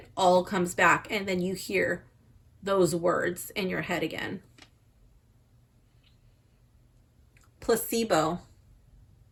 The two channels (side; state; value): both; identical; correlation 1.00